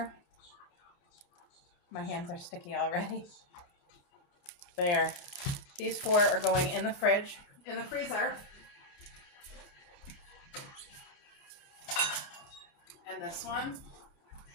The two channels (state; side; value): late; right; 30 ms